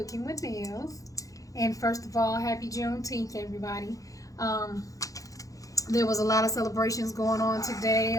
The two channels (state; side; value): late; right; 0.17 ms